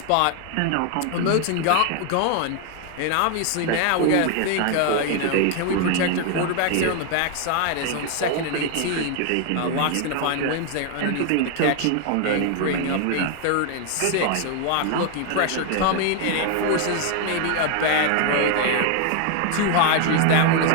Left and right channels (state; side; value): different; both; correlation 0.01